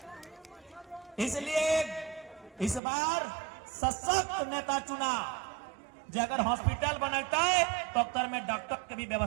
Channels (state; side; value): drops out; left; at 2.8 s